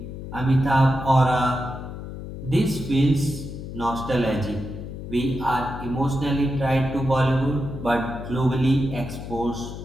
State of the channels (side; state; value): left; noise; hum, 9 dB below the sound